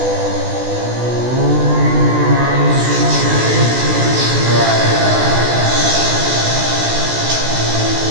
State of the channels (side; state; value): left; late; 16 ms